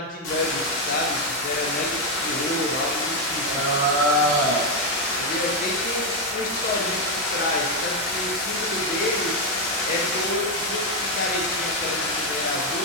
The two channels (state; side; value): normal; both; correlation 0.04